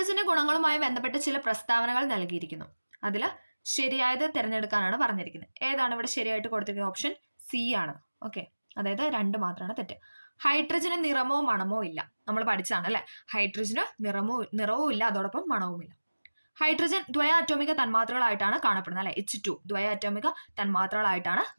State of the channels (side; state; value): both; inverted; correlation -1.00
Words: ഗുണങ്ങളുമായി ബന്ധപ്പെട്ട് ചില പ്രസ്താവനകൾ നൽകിയിരിക്കുന്നു. അതിൽ ശരിയായത് തിരഞ്ഞെടുക്കാനാണ് പറഞ്ഞിരിക്കുന്നത്. ഏതാണ് ഇവിടെ ശരിയായിട്ട് കൊടുത്തിരിക്കുന്നത്? ഓപ്ഷൻ സി ആണ്. ഓക്കെ, അതായത് 2 മാത്രമാണ് തെറ്റ്. ഹൈഡ്രജന് നിറമോ മണമോ ഇല്ല. നമ്മൾ പഠിച്ചാണ് അല്ലെ, ഹൈഡ്രജന് നിറവും ഇല്ല, അതോടൊപ്പം മണവും ഇല്ല. ഹൈഡ്രജൻ ദ്വയാറ്റോമിക തന്മാത്രകളായിട്ടാണ് കാണപ്പെടുന്നത് അല്ലെ, H2 ദ്വയാറ്റോമിക തന്മാത്രകളായിട്ടാണ്